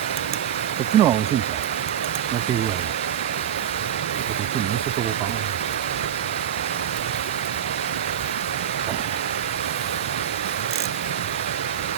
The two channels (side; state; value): left; quieter; 9.8 dB